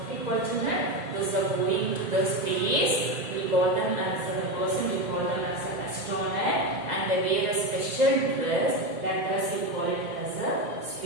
children. Those are going to the space. We call them as the person. We call them as an astronaut, and they wear a special dress. That dress we call it as a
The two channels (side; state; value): left; late; 2.0 ms